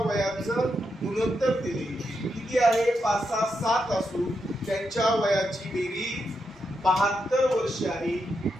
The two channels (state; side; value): normal; both; correlation 0.84